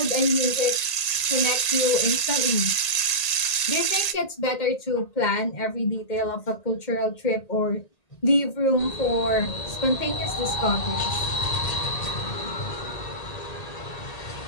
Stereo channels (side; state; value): right; late; 1.8 ms